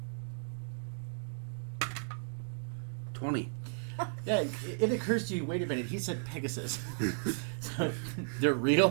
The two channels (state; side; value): silent; left; digital silence